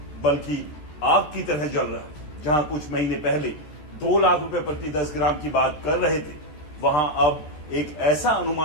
बल्कि आग की तरह जल रहा है। जहां कुछ महीने पहले 2 लाख रुपए प्रति 10 ग्राम की बात कर रहे थे, वहां अब एक ऐसा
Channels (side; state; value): right; late; 13 ms